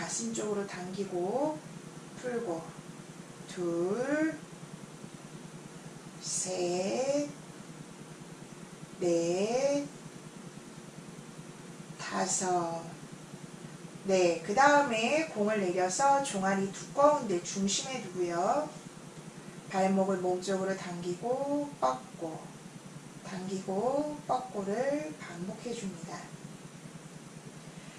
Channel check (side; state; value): both; identical; correlation 1.00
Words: 쪽으로 당기고 풀고 둘, 셋, 넷, 다섯. 네, 그 다음에 공을 내려서 종아리 두꺼운데 중심에 두고요. 발목을 몸쪽으로 당기고 뻗고 당기고 뻗고를 반복해 줍니다.